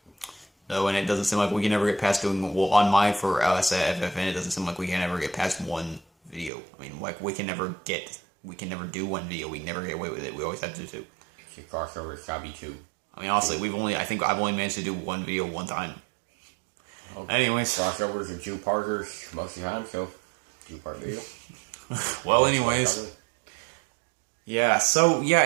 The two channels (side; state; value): left; drops out; at 6.5 s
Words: No, and it doesn't seem like we can ever get past doing, well, on my, for us at FFN, it doesn't seem like we can ever get past one video. I mean, like, we can never do one video, we can never get away with it, we always have to do two. It's a crossover, it's gotta be two. I mean, honestly, I think I've only managed to do one video one time. Okay. Anyways. Crossovers are two-parters most of the time, so, two-part video. Well, anyways. Yeah, so, yeah,